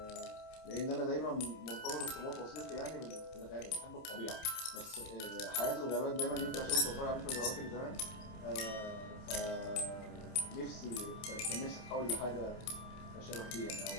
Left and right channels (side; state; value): right; late; 27 ms